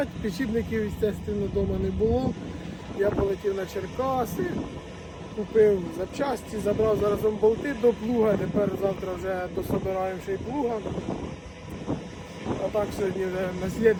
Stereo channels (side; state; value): both; identical; correlation 1.00